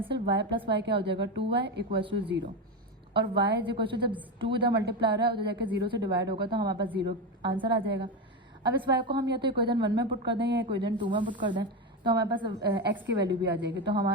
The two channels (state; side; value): normal; both; correlation 0.15